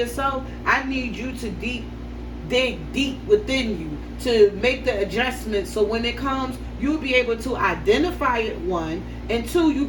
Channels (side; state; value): both; identical; correlation 1.00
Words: I need you to dig deep within you to make the adjustments so when it comes, you'll be able to identify it, one, and two, you'll